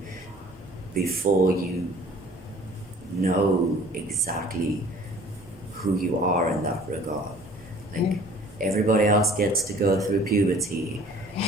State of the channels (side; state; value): both; normal; correlation 0.50